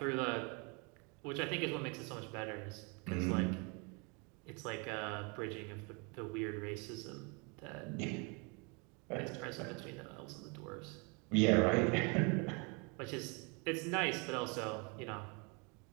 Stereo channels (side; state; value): left; quieter; 32.2 dB